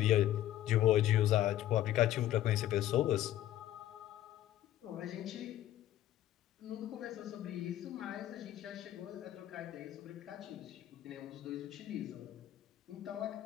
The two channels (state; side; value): quieter; right; 13.2 dB